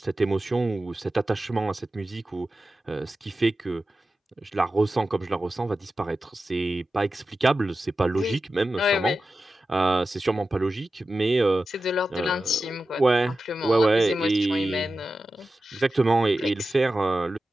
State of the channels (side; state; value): both; normal; correlation 0.93